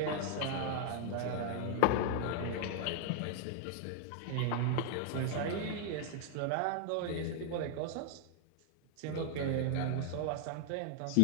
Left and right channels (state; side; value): different; both; correlation 0.00